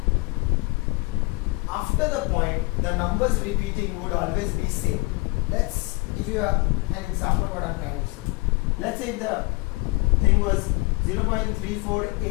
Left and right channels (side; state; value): right; quieter; 24.9 dB